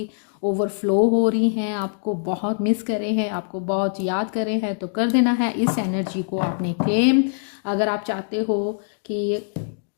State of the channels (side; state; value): right; silent; digital silence